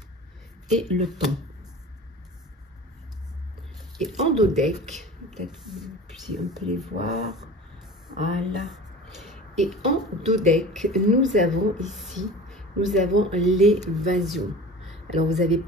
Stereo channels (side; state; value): both; normal; correlation 0.38